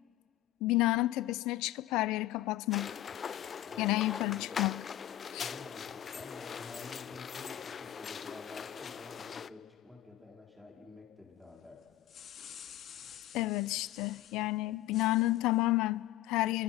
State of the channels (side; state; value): right; quieter; 14.8 dB